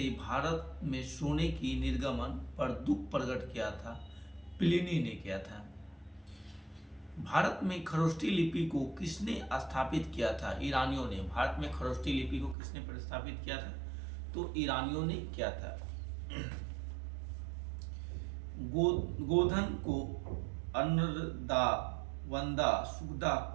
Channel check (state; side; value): drops out; left; at 12.6 s